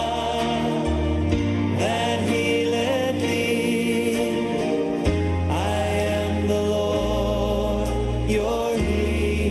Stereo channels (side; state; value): both; identical; correlation 1.00